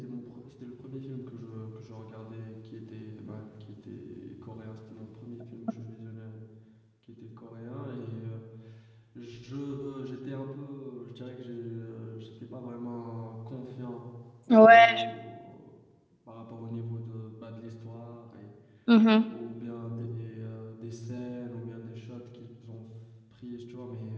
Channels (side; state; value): both; identical; correlation 1.00